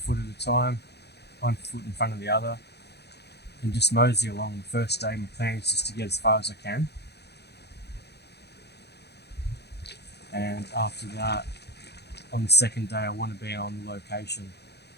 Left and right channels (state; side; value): late; right; 0.48 ms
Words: at a time, 1 foot in front of the other, and just mosey along. The first day, my plan is just to get as far as I can, and after that, on the second day, I want to be on location